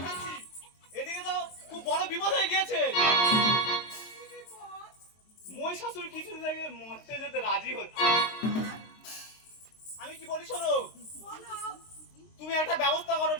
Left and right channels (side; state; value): right; late; 23 ms